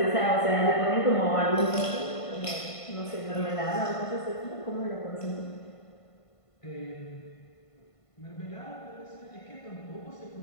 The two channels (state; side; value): late; right; 1.5 ms